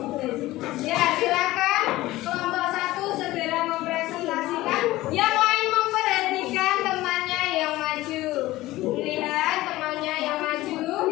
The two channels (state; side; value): quieter; right; 17.4 dB